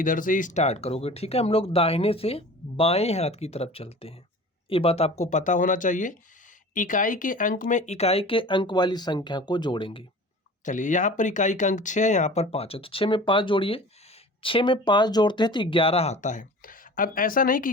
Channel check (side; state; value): both; normal; correlation 0.40